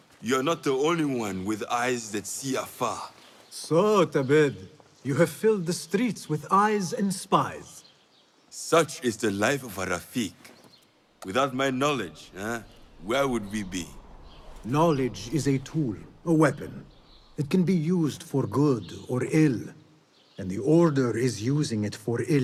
You're not the only one with eyes that see afar. So, Tabid, you have filled the streets with eyes and spies. Such is the life of a Rafiq. Without my knowledge, where would we be? Knowledge is a tool, a weapon. It can be used for good or ill. And the Order is using it for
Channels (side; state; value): both; identical; correlation 1.00